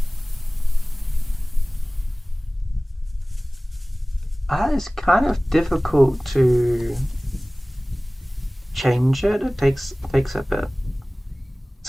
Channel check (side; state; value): both; normal; correlation 0.98